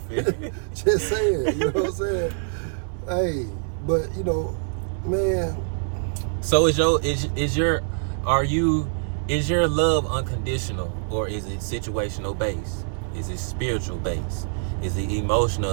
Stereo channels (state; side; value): silent; left; 62 dB below the other